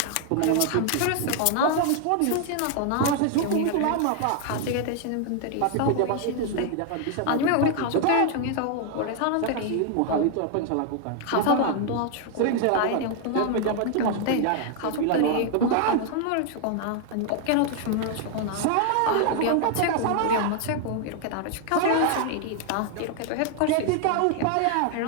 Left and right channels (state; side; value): different; both; correlation 0.00